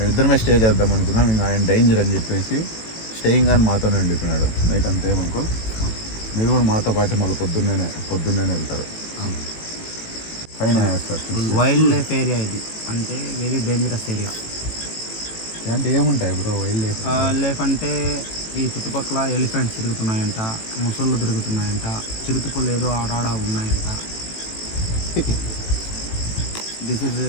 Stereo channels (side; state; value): right; late; 18 ms